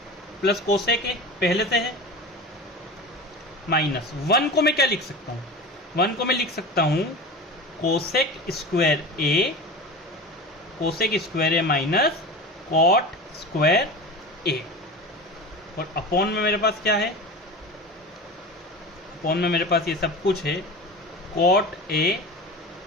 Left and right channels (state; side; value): normal; both; correlation 0.31